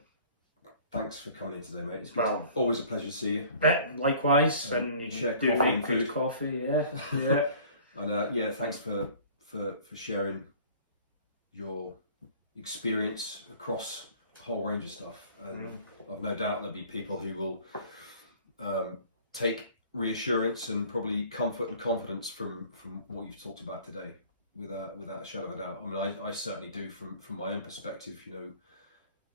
Thanks for coming in today, mate. It's good. Well, Always a pleasure to see you. Likewise, and you share do coffee make and good food. coffee, yeah, yeah. And yeah, thanks for sharing your experience across a whole range of stuff. And I've no doubt there'll be people who will take reassurance and probably comfort and confidence from what you've talked about today, without a shadow of a doubt. I mean, I certainly do from my own perspective. You know,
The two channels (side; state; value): both; inverted; correlation -0.50